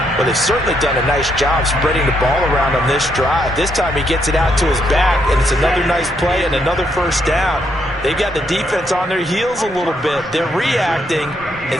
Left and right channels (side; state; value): both; normal; correlation 0.76